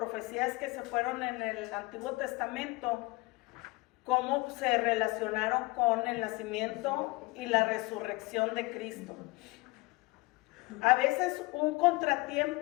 que se fueron en el Antiguo Testamento, cómo se relacionaron con el nacimiento y la resurrección de Cristo. A veces un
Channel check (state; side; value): quieter; right; 23.6 dB